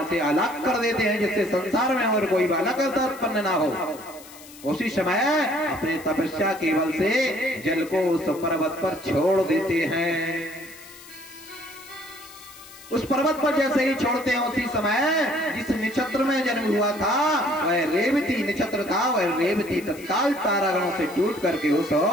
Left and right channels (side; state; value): left; noise; hiss, 19 dB below the sound